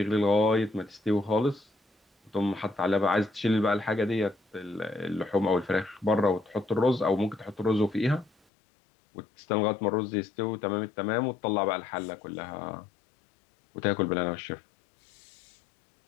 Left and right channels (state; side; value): drops out; right; at 8.3 s